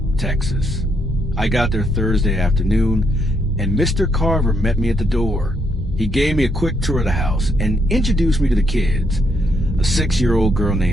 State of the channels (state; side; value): normal; both; correlation 0.75